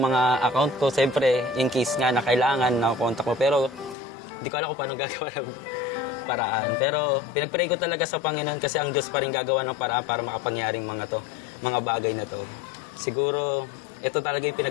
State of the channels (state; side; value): drops out; right; at 4.0 s